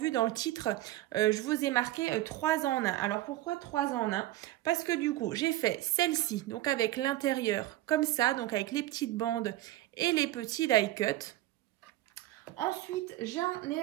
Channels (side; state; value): left; quieter; 15.8 dB